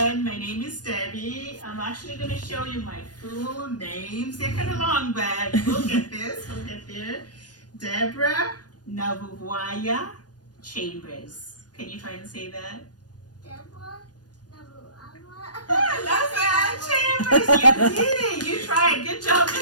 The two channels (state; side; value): late; right; 0.69 ms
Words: My name is Debbie. I'm actually going to show you my full names. They're kind of long, but we'll get this. We'll get there. Deborah Nabubwaya Chambers. Can you try and say that? Deborah Nabubwaya. I love that, Chambers. You did it. You tried. Good job.